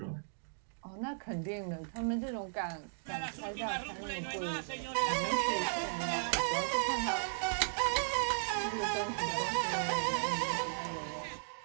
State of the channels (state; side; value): silent; left; digital silence